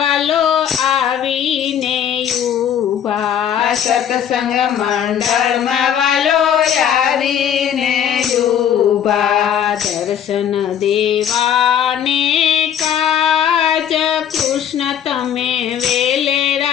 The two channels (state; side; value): quieter; right; 9.2 dB